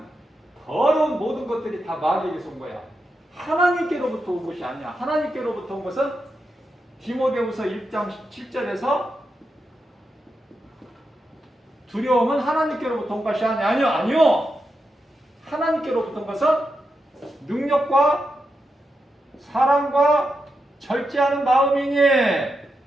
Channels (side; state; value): both; normal; correlation 0.86